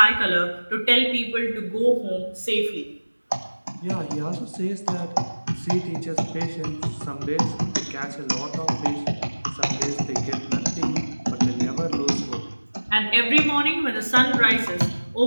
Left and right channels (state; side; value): inverted; both; correlation -1.00